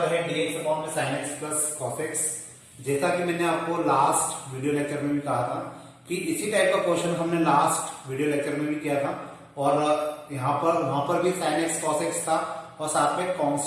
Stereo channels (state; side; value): identical; both; correlation 1.00